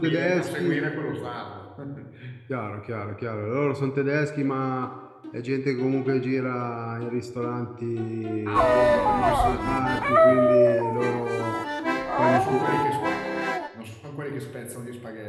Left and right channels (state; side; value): identical; both; correlation 1.00